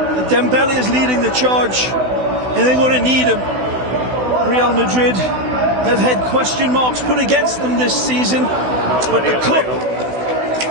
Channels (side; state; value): left; late; 16 ms